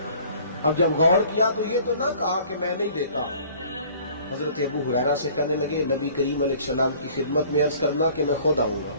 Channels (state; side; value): inverted; both; correlation -0.52